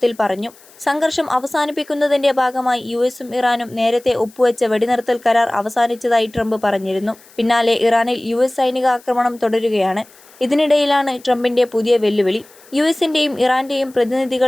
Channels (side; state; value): left; noise; hiss, 26 dB below the sound